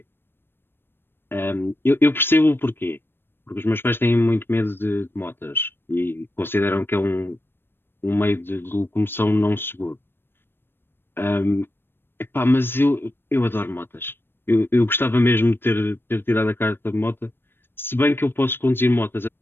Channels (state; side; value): late; right; 0.10 ms